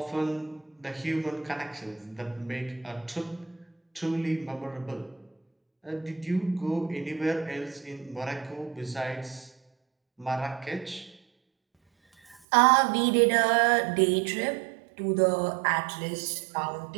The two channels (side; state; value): left; drops out; at 12.4 s